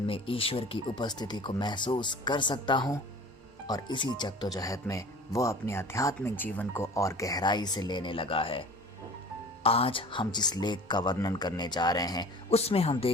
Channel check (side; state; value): both; normal; correlation 0.43